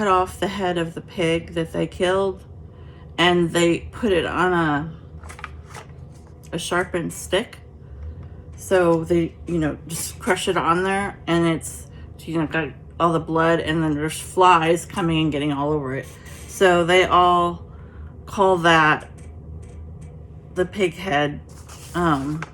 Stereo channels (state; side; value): identical; both; correlation 1.00